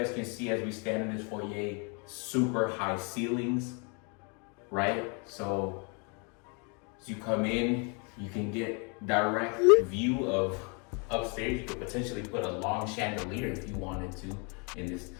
can see, as we stand in this foyer, super high ceilings, right? So as you come in, you can get direct view of upstairs. You could potentially put a long chandelier if you wanted to in this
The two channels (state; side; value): quieter; right; 35.0 dB